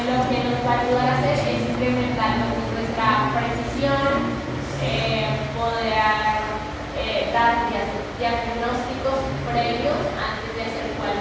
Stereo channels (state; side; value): identical; both; correlation 1.00